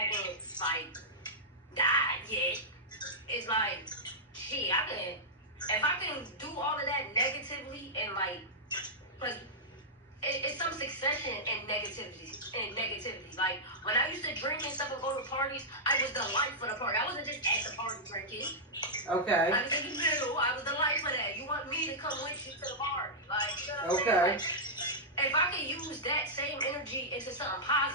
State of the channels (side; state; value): both; normal; correlation -0.09